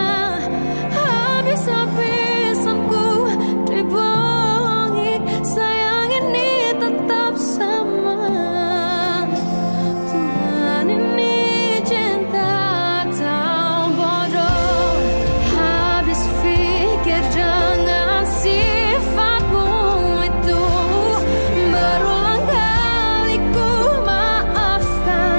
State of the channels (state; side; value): inverted; both; correlation -1.00